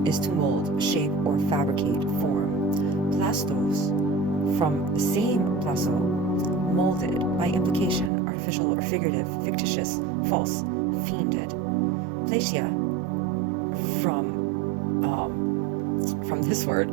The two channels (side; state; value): left; drops out; at 8.1 s